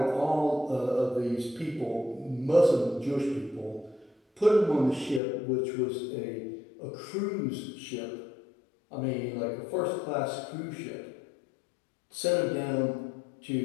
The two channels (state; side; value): drops out; right; at 5.2 s